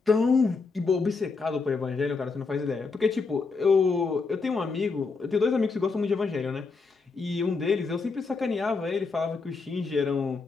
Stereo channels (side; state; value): right; quieter; 4.4 dB